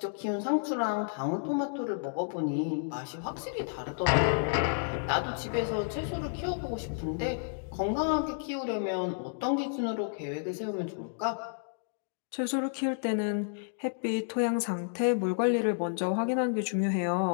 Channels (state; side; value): silent; right; digital silence